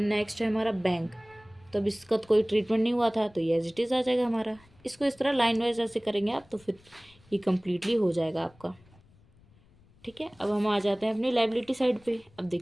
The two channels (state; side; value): noise; left; rumble, 29 dB below the sound